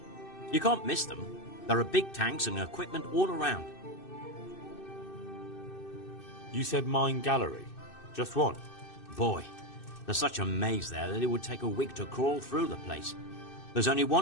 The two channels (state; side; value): late; right; 2.6 ms